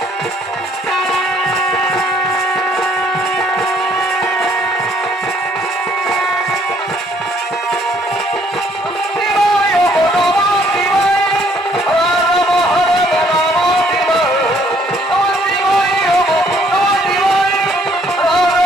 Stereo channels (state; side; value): normal; both; correlation 0.64